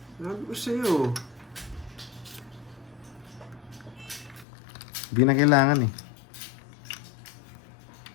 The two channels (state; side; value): drops out; right; at 4.5 s